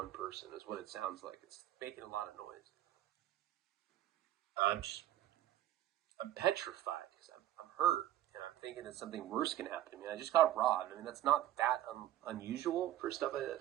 person is what it sounds like. It's making a lot of noise. I'm petrified because I'm hurt, and I'm thinking that something worse can happen to me. I just got robbed. I mean, that's not that unusual for stuff like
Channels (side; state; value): left; quieter; 12.9 dB